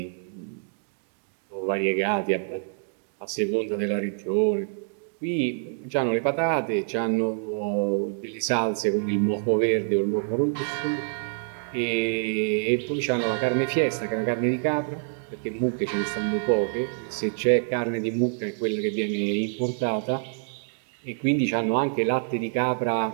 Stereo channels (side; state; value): left; silent; digital silence